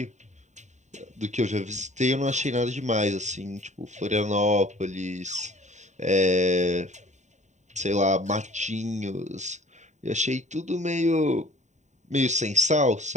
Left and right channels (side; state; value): left; late; 0.34 ms